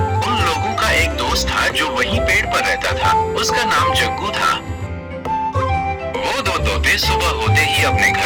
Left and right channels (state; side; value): identical; both; correlation 1.00